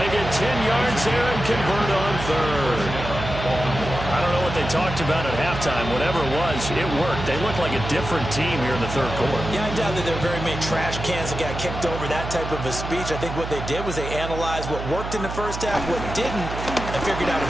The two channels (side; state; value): right; noise; hum, 7 dB below the sound